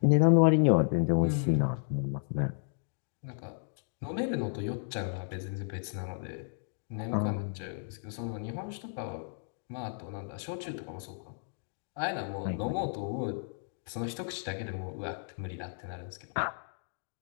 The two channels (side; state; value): right; silent; digital silence